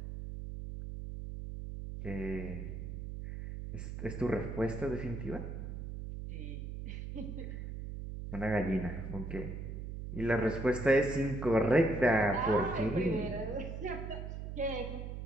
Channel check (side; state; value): right; noise; hum, 7 dB below the sound